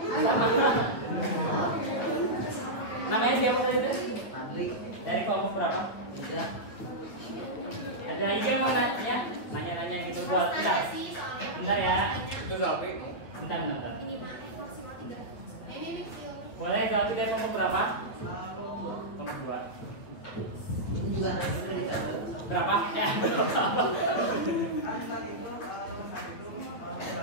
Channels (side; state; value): right; late; 9.2 ms